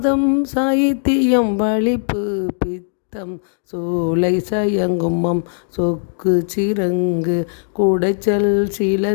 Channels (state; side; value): silent; right; digital silence